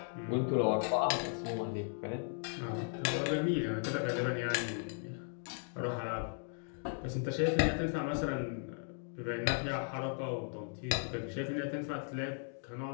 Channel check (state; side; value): silent; right; 53 dB below the other